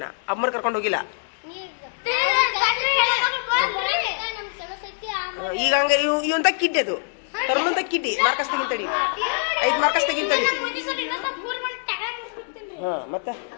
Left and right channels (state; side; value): silent; right; digital silence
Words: ಅಮ್ಮರ್ ಕರ್ಕೊಂಡು ಹೋಗಿಲ್ಲ? ಈಗ ಹಂಗ ಇವಂತ ಕಿಡ್ಡಿ ಅದು ತರ್ಮಂತ ಕಿಡ್ಡಿ. Marcus ತೆಗಿತಡಿ, 5 Marcus ತೆಗಿತಡಿ. ಹಾ, ಮತ್ತ